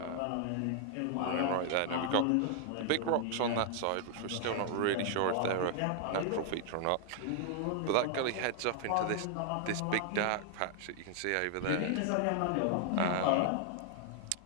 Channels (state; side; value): different; both; correlation 0.00